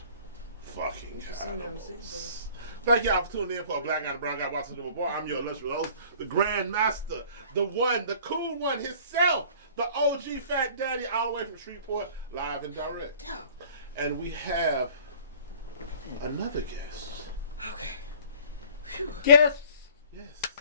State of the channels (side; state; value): both; inverted; correlation -0.50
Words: fucking animals. Thank y'all for tuning in for a Black Guy and Brown Guy Watching the Bar. I'm your illustrious host, the Grand Master, the one, the cool one himself, the OG Fat Daddy, all the way from Shreveport, live and direct. And we have another guest. Okay. Guest. Yes.